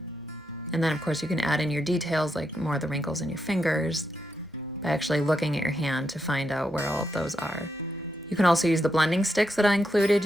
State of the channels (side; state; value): both; normal; correlation 0.83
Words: And then of course you can add in your details like more of the wrinkles in your fingers by actually looking at your hand to find out where all of those are. You can also use the blending sticks that I included.